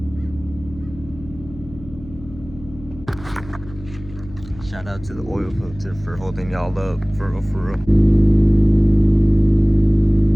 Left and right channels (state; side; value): noise; left; hum, 17 dB below the sound